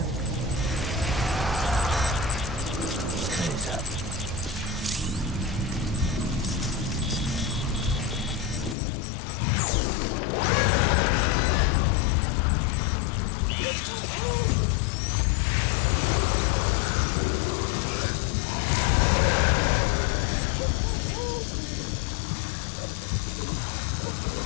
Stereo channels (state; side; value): drops out; right; at 8.8 s